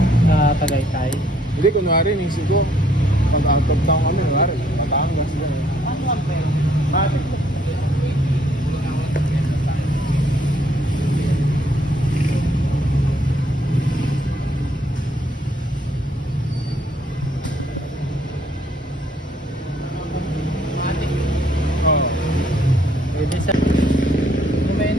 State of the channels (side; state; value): both; normal; correlation 0.66